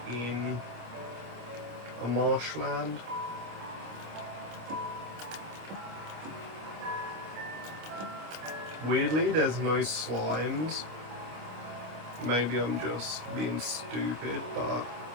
in a marshland. Weirdly, there's no slimes. Maybe I'm just being stupid, but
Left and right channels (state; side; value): late; left; 26 ms